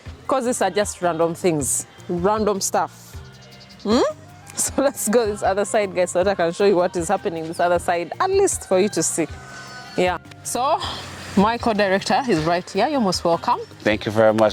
because these are just random things, random stuff. So let's go this other side, guys, so that I can show you what is happening this other side, at least for you to see. Yeah. So my co-director is right here. You're most welcome. Thank you very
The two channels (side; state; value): both; identical; correlation 1.00